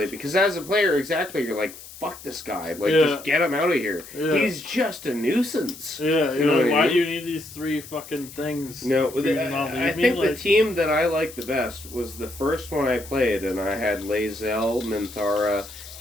because as a player, exactly, you're like, fuck this guy. Like, just get him out of here. Yeah. He's just a nuisance. Yeah, You know like, what I why mean? do you need these 3 fucking things? No, for you to not leave I me? think the Like, team that I liked the best was the first one I played, and I had Lae'zel, Minthara,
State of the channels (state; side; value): noise; left; hiss, 16 dB below the sound